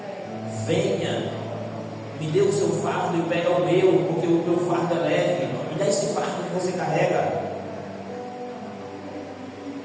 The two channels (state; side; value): identical; both; correlation 1.00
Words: Venha. Me dê o seu fardo e pega o meu, porque o meu fardo é leve. Me dá esse fardo que você carrega.